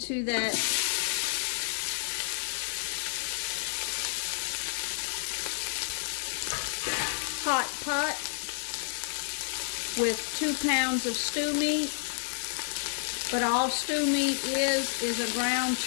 that hot pot with 2 pounds of stew meat. But all stew meat is a ground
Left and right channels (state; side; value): silent; right; 58 dB below the other